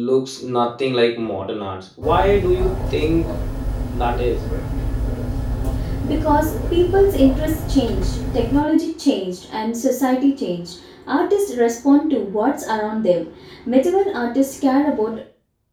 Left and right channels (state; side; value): identical; both; correlation 1.00